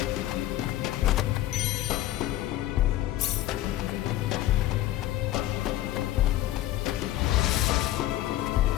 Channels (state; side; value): quieter; right; 14.4 dB